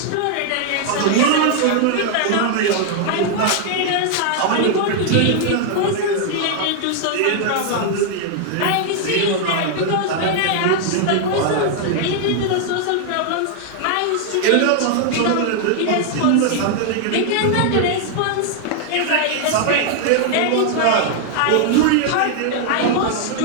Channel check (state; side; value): different; both; correlation 0.00